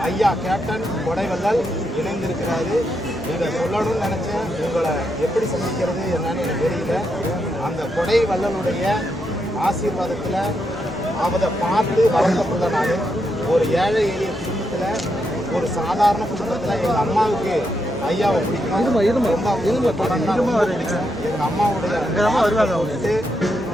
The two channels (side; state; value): both; normal; correlation 0.82